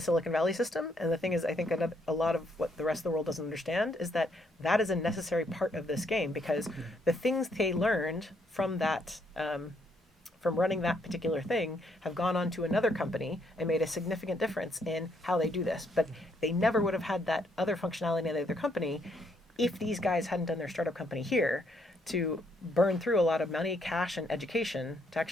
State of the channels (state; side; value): normal; both; correlation 0.72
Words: Silicon Valley system. And the thing is, I think a lot of what the rest of the world doesn't understand is that is a necessary part of this game, because the things they learned from that, from running that particular thing, have gone on to another company and made a significant difference in how they do this. But they never would have had that other functionality in the other company if these guys hadn't done their startup company here to burn through a lot of money, cash, and education to